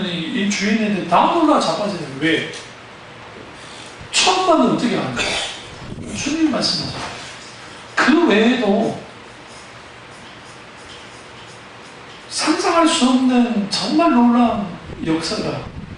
이 주인한테 다 놀라 자빠져요. 왜? 처음 봤는데 어떻게 아는 거야? 주님 말씀하죠. 그 외에도 상상할 수 없는 정말 놀라운 역사가,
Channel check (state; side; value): identical; both; correlation 1.00